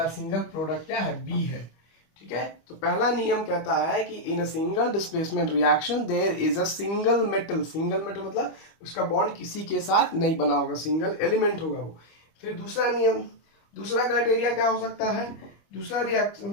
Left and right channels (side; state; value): right; late; 25 ms